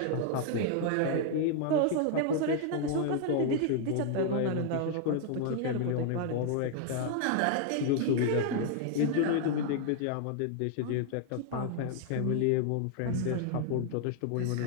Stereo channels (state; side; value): different; both; correlation 0.00